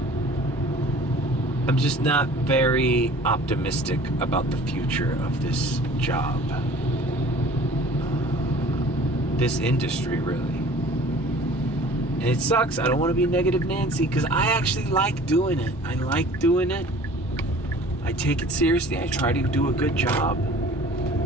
I'm just not very optimistic about the future of this job. This industry, really. And it sucks. I don't want to be negative Nancy, because I actually like doing it. I like doing it. I take it seriously. I try to do a good job.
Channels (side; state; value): both; normal; correlation 0.47